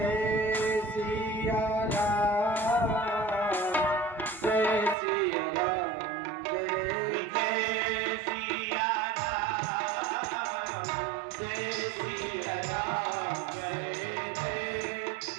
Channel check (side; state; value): left; drops out; at 5.0 s